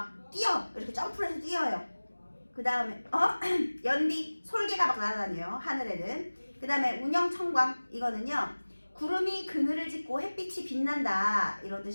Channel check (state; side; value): inverted; both; correlation -1.00